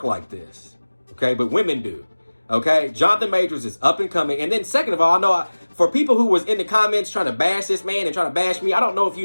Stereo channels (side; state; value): both; inverted; correlation -1.00